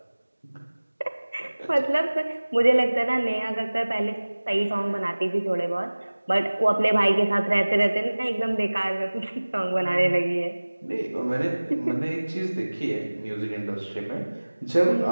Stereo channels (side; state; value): both; inverted; correlation -1.00